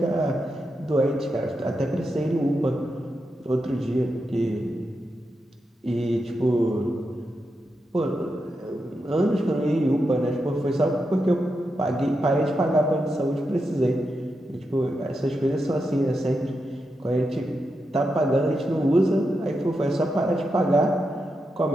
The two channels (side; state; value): both; normal; correlation 0.86